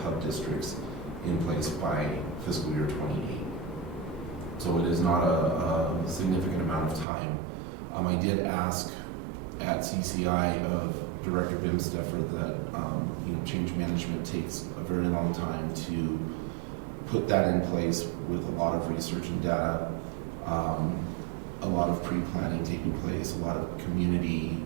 hub districts in place by fiscal year 28. So it is not a significant amount of time. I did ask at CCI of Director Bimsteffer that change management takes a very long time to put that in place with a lot of research and data, a lot of pre-planning taking place, a lot of community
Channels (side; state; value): left; drops out; at 7.1 s